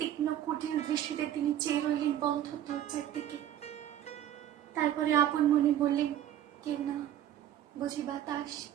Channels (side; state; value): left; quieter; 11.4 dB